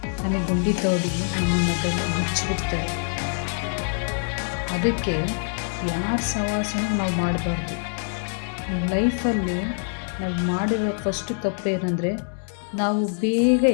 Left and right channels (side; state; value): right; silent; 62 dB below the other